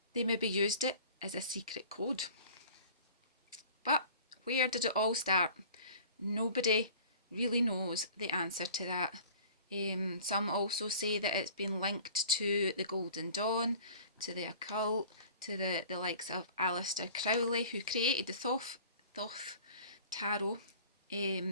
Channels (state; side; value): inverted; both; correlation -0.45